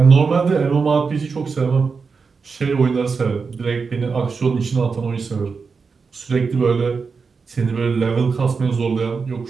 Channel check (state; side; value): quieter; left; 5.1 dB